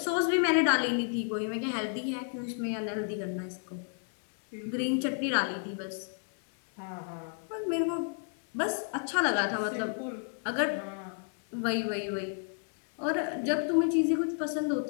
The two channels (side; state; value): right; silent; 55 dB below the other